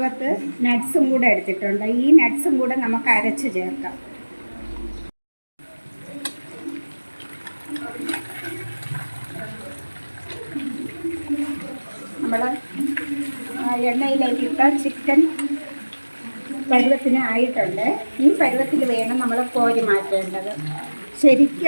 നട്ട്സും കൂടെ എടുത്തിട്ടുണ്ട്. ഈ നട്ട്സും കൂടെ നമുക്ക് അരച്ച് ചേർക്കാം. നമ്മൾ എണ്ണയിലേക്ക് ഇട്ട ചിക്കൻ പരുവത്തിന് ആയിട്ടുണ്ട്. ഈ പരുവത്തിൽ വേണം നമ്മൾ കോരി മാറ്റേണ്ടത്.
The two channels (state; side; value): inverted; both; correlation -1.00